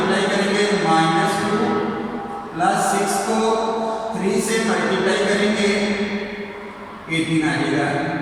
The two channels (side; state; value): both; identical; correlation 1.00